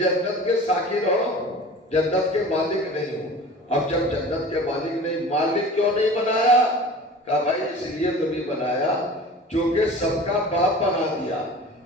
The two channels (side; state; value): both; normal; correlation 0.40